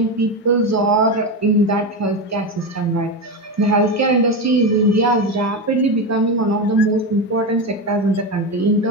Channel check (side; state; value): both; normal; correlation 0.15